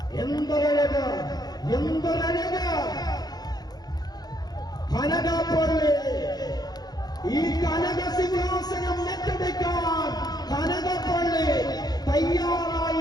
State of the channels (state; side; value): late; right; 0.19 ms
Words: എന്തൊരഴക്, എന്തൊരഴക്. കനകപ്പള്ളി ഈ കനക സിംഹാസനം ഏറ്റെടുക്കാൻ കനകപ്പള്ളി